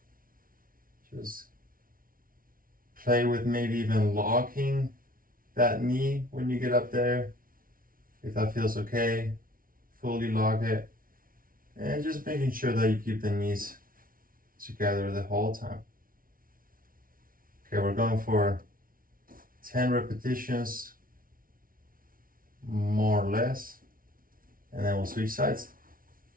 Just play with maybe even locking that knee when you get up there. If that feels okay, fully lock it. And just making sure that you keep the knees together the whole time. Okay, we're going for 10 repetitions, more or less. And then we'll switch sides.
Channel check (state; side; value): late; left; 0.41 ms